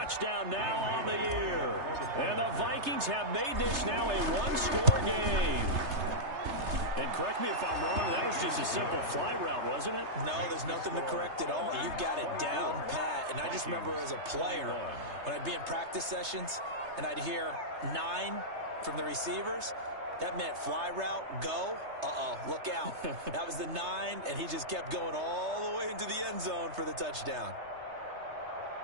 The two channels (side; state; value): left; late; 3.3 ms